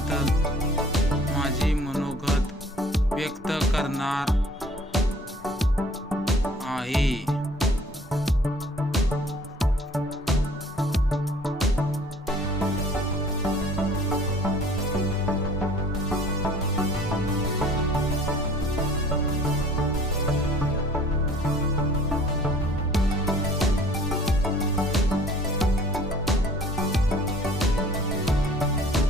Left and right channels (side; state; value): both; normal; correlation 0.52